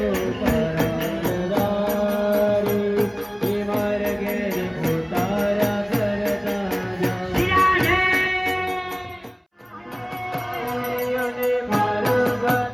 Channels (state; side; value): identical; both; correlation 1.00